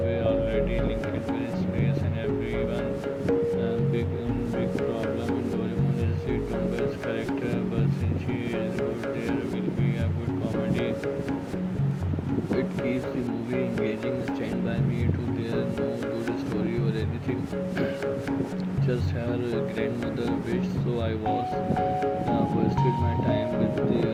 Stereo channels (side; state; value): both; identical; correlation 1.00